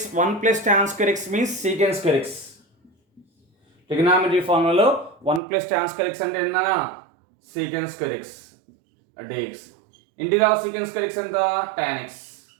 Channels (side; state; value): left; drops out; at 5.4 s